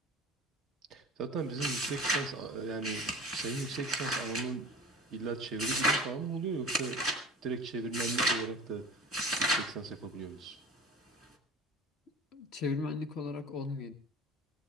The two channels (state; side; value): normal; both; correlation 0.39